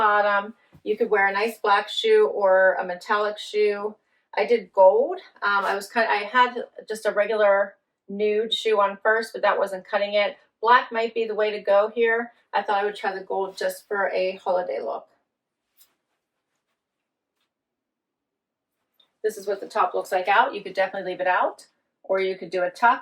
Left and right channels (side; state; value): both; identical; correlation 1.00